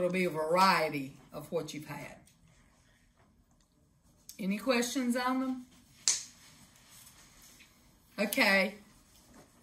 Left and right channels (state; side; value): identical; both; correlation 1.00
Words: be a variety of what you've had. Any questions on them? Okay.